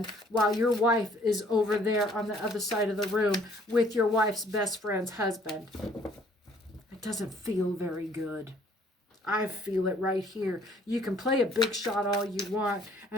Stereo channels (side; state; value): both; normal; correlation 0.60